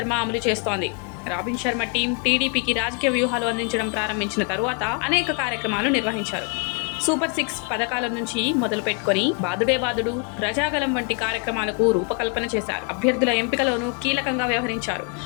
అమలు చేస్తోంది. రాబిన్ శర్మ టీం టీడీపీకి రాజకీయ వ్యూహాలు అందించడం ప్రారంభించిన తరువాత అనేక కార్యక్రమాలు నిర్వహించారు. సూపర్ 6 పథకాల నుంచి మొదలు పెట్టుకుని బాదుడే బాదుడు, ప్రజాగలం వంటి కార్యక్రమాలకు రూపకల్పన చేశారు. అభ్యర్థుల ఎంపికలోనూ కీలకంగా వ్యవహరించారు.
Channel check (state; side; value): quieter; right; 34.8 dB